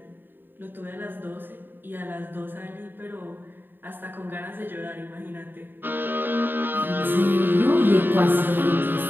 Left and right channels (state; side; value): late; left; 0.095 ms